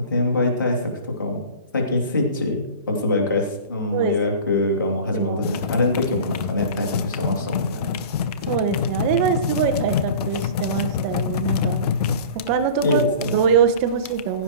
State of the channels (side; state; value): both; inverted; correlation -0.38